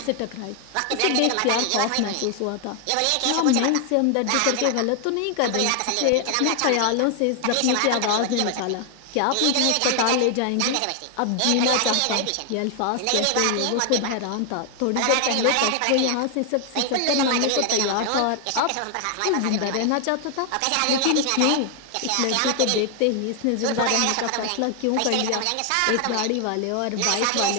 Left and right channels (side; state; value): both; different; correlation 0.00